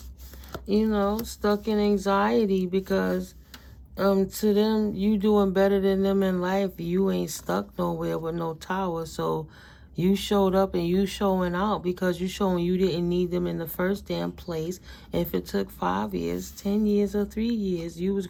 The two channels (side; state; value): both; identical; correlation 1.00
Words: You know, stuck in anxiety because to them, you doing better than them in life. You ain't stuck nowhere with no tower. So you showed up and you showing out because you showing you didn't need them in the first damn place. If it took 5 years, 10 years, or 3 years, you was